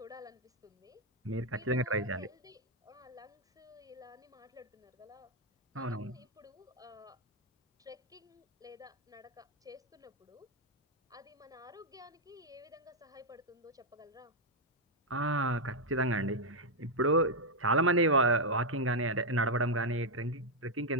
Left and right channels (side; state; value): both; normal; correlation -0.01